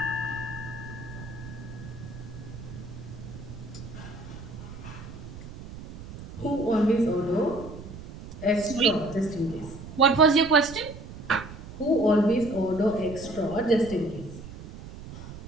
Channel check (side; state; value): right; noise; rumble, 13 dB below the sound